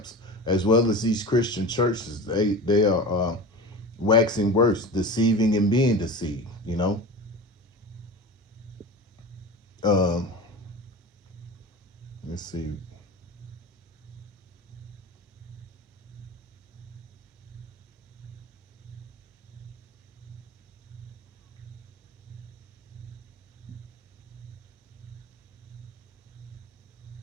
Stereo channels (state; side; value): normal; both; correlation 0.31